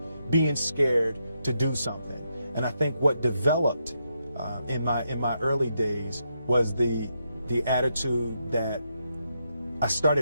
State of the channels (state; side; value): inverted; both; correlation -0.81